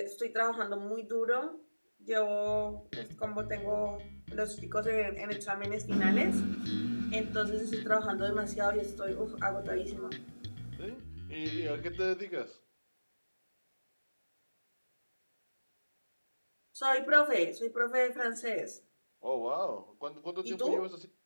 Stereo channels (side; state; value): both; inverted; correlation -1.00